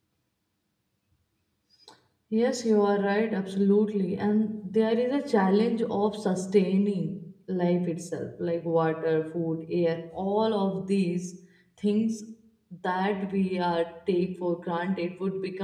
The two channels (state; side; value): identical; both; correlation 1.00